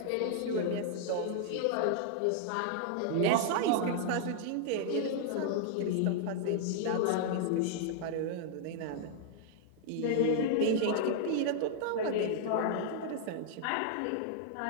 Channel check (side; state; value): both; different; correlation -0.01